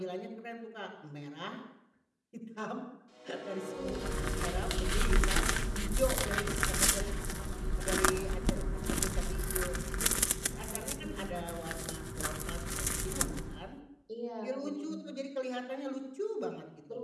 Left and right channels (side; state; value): both; identical; correlation 1.00